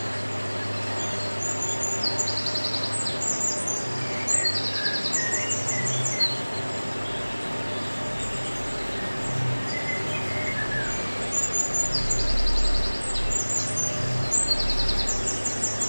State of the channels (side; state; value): both; inverted; correlation -1.00